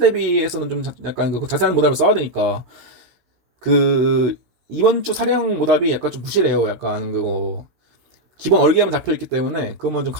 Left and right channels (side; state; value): left; late; 16 ms